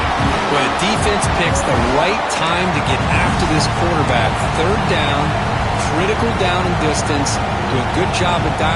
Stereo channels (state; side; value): identical; both; correlation 1.00